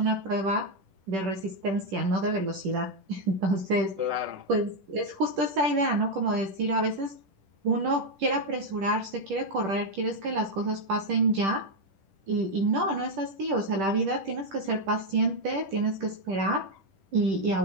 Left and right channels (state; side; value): late; left; 10 ms